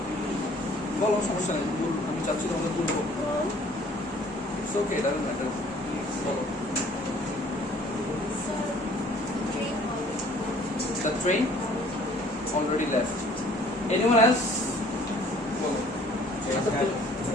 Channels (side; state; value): both; normal; correlation 0.55